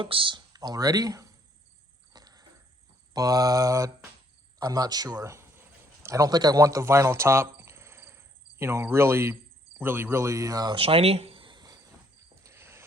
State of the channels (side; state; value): both; normal; correlation 0.67